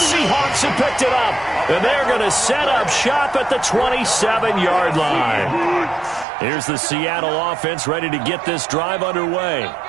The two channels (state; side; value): drops out; left; at 6.2 s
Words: have picked it up. And they're going to set up shop at the 27-yard line. Here's the Seattle offense ready to get this drive underway.